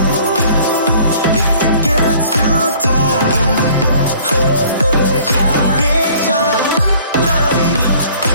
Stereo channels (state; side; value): inverted; both; correlation -0.54